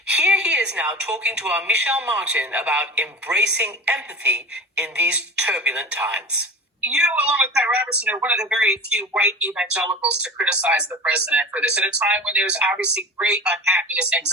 Here he is now talking to our Michelle Martin about embracing empathy in these turbulent times. You, along with Pat Robertson, are one of the very few white evangelicals to criticize the president for this at a time when there's obviously great unhappiness,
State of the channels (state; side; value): normal; both; correlation 0.33